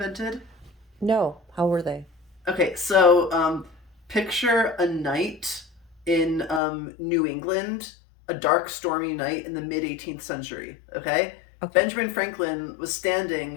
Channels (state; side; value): drops out; right; at 6.6 s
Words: No, how were they? Okay, so picture a night in New England, a dark, stormy night in the mid 18th century. Okay, Okay. Benjamin Franklin was